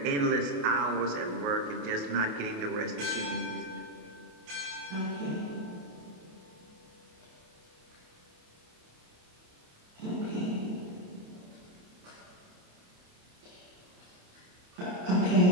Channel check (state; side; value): late; left; 28 ms